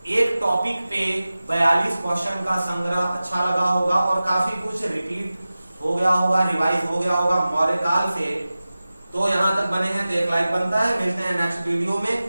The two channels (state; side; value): inverted; both; correlation -0.96